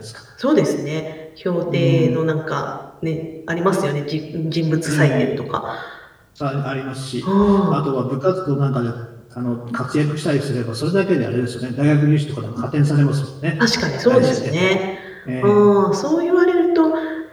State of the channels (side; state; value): both; identical; correlation 1.00